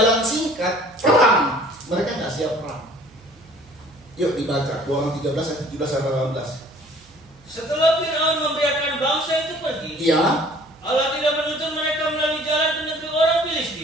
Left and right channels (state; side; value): noise; right; hum, 28 dB below the sound